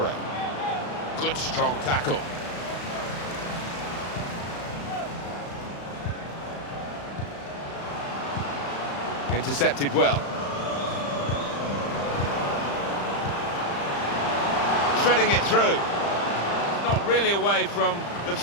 Good strong tackle. Intercepted well. Threading it through. Not really away from the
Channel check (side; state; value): right; late; 35 ms